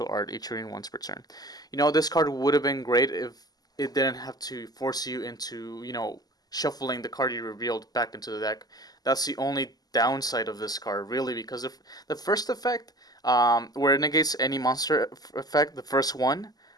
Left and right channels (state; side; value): late; right; 0.19 ms